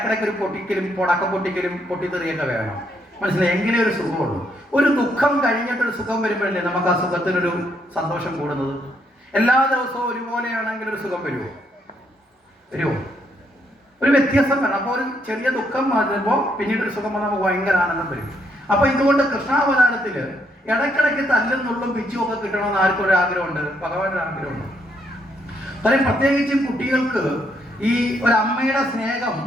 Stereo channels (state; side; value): normal; both; correlation 0.74